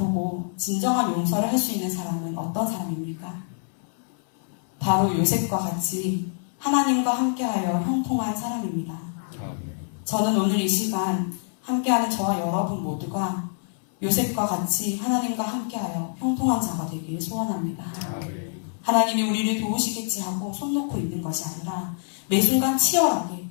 진정한 용서를 할 수 있는 사람은 어떤 사람입니까? 바로 요셉과 같이 하나님과 함께하여 형통한 사람입니다. 저는 오늘 이 시간 함께하는 저와 여러분 모두가 요셉과 같이 하나님과 함께하여 형통한 자가 되기를 소원합니다. 하나님이 우리를 도우시겠지 하고 손 놓고 있는 것이 아니라 매 순간 치열하게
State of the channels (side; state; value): right; silent; 61 dB below the other